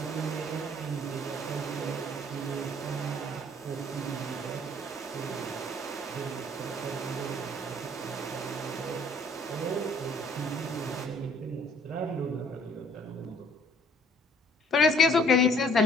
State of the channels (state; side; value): normal; both; correlation 0.58